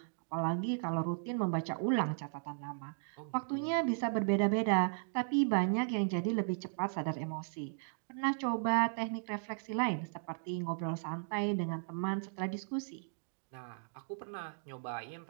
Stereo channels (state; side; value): silent; left; digital silence